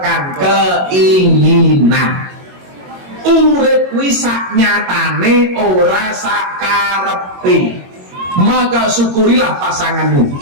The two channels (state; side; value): late; left; 22 ms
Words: keinginan. Urip kuwi sak nyatane ora sak karepe. Maka syukurilah pasanganmu.